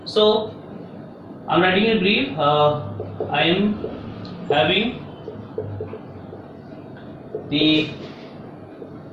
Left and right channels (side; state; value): both; identical; correlation 1.00